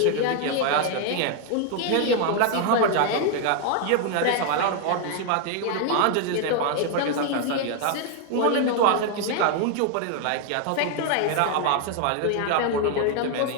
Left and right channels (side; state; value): both; different; correlation 0.00